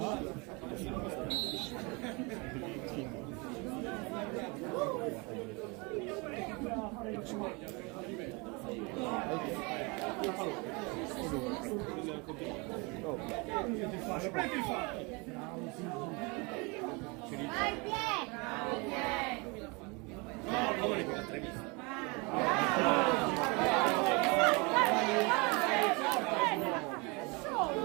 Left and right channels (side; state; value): left; quieter; 28.7 dB